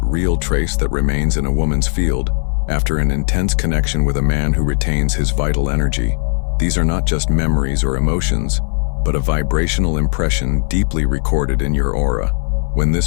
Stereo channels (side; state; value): right; silent; digital silence